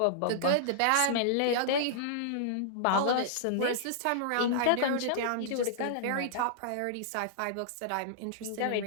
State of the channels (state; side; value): different; both; correlation -0.02